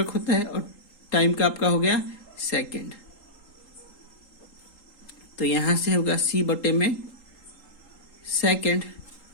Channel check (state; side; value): late; right; 3.8 ms